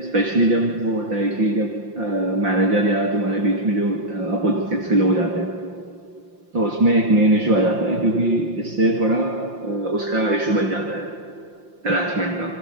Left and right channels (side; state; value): left; late; 5.7 ms